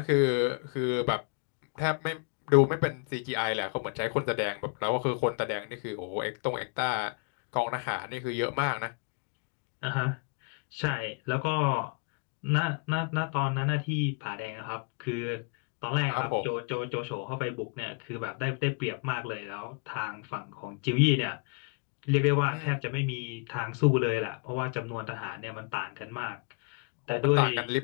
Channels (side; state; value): right; quieter; 36.9 dB